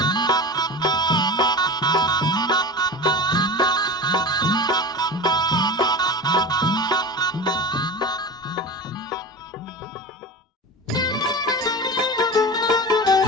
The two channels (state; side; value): normal; both; correlation 0.30